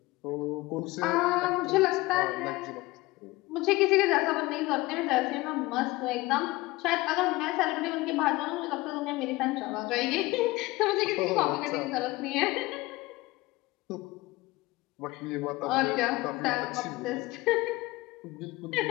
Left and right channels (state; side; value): quieter; right; 20.5 dB